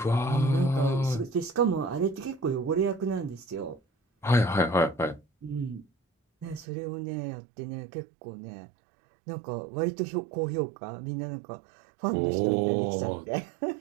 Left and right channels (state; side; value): drops out; left; at 6.7 s